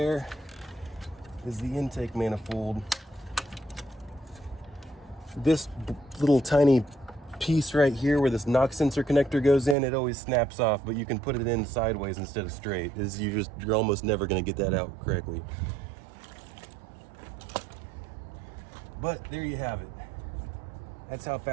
is the intake manifold. This little tiny piece right here where this knock sensor connector goes in, it always snaps off, but you can put it in sideways instead of straight. You're almost never gonna get that out correctly. But there you have it. That's how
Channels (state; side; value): drops out; left; at 9.8 s